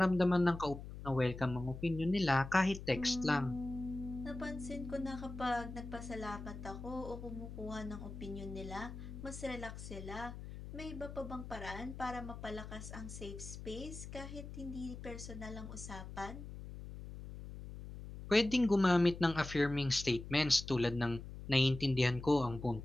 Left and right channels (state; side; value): noise; left; hum, 11 dB below the sound